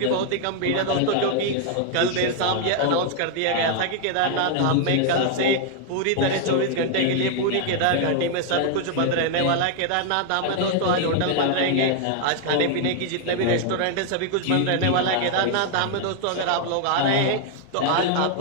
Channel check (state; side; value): different; both; correlation 0.00